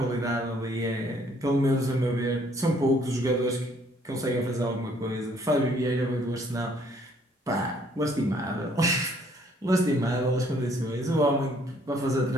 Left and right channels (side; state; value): both; normal; correlation 0.63